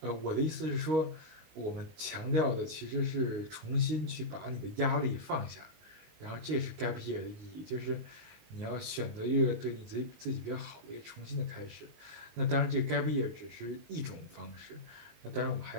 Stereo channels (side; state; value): left; late; 19 ms